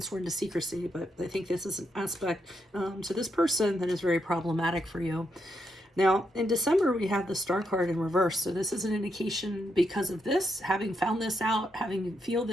sworn to secrecy. But I think this is an aspect to this person that is very problematic for you. Now, in December, we have the Star card in reverse. So this is an indication because of this, having found this out, having feel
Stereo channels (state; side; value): normal; both; correlation 0.80